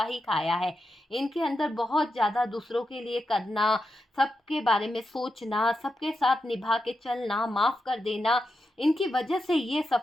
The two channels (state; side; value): normal; both; correlation 0.87